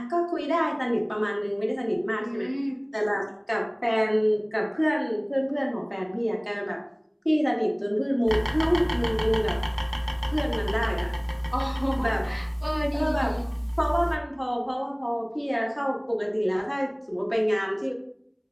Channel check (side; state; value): both; identical; correlation 1.00